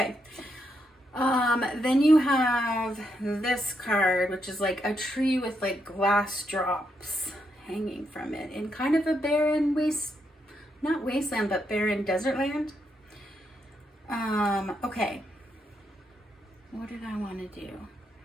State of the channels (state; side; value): normal; both; correlation 0.79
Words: Then you have this card, which is like a tree with like glass drops hanging from it in kind of a barren not wasteland, but barren desert land. Okay. What did I want to do?